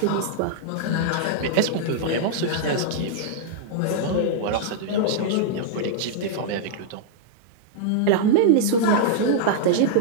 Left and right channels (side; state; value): both; different; correlation -0.02